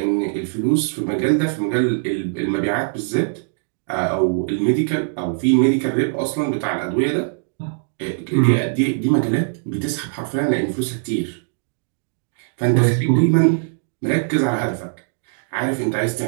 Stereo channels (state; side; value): silent; left; digital silence